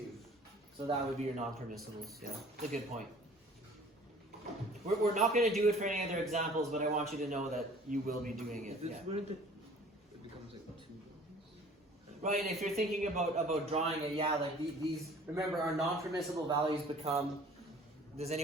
So that would be your non-permissibles, yeah. It's a good point. We're not going to do it for any other examples, but I want you to know that you will be doing it. Is this Yeah. where it becomes like 2? Right, and if you're thinking about drawing it, yeah, like these, remember our non-permissible values become, does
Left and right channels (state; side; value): normal; both; correlation 0.50